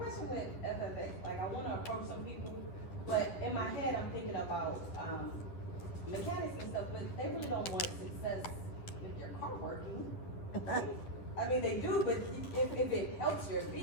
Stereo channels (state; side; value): late; right; 10 ms